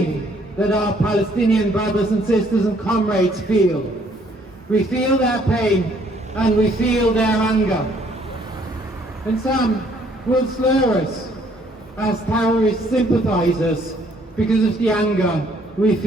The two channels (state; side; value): normal; both; correlation 0.64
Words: that our Palestinian brothers and sisters and comrades feel. We feel their pain and we feel their anger. And some will slur us as terrorist sympathisers because of the anger we